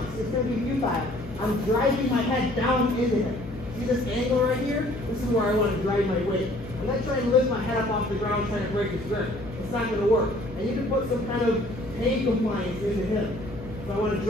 It's going to be futile. I'm driving my head down into him. See this angle right here? This is where I want to drive my weight. I'm not trying to lift my head up off the ground trying to break his grip. It's not going to work. I need to put some kind of pain compliance into him. So I want to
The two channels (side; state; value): left; noise; hum, 14 dB below the sound